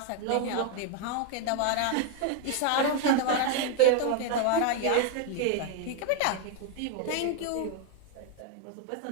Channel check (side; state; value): both; different; correlation 0.00